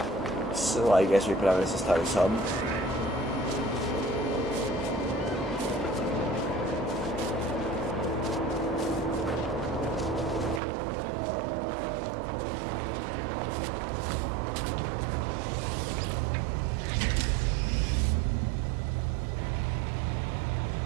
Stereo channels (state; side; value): drops out; left; at 10.6 s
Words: So I guess we probably just start some.